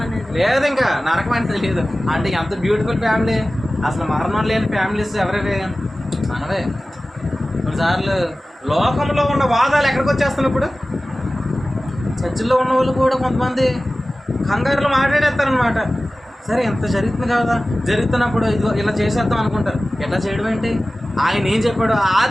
అనేది లేదు, ఇంకా నరకం అనేది లేదు. అంటే ఎంత బ్యూటిఫుల్ ఫ్యామిలీ. అసలు మరణం లేని ఫ్యామిలీస్ ఎవరివి? మనవే. కొన్నిసార్లు లోకంలో ఉన్న వాదాలు ఎక్కడికి వచ్చేస్తున్నాయి ఇప్పుడు. చర్చిల్లో ఉన్న వాళ్ళు కూడా కొంతమంది కంగారులో మాట్లాడేస్తారనమాట. సరే ఎంత జరుగుతుంది కదా, జరుగుతున్నప్పుడు ఇది ఇలా చేసేద్దాం అనుకుంటారు. ఎట్లా చేయడం ఏంటి? ఆయన ఏం చెప్పాడు?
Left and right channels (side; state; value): both; normal; correlation 0.96